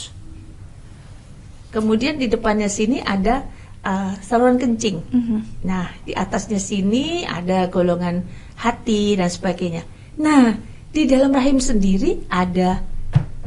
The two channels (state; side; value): identical; both; correlation 1.00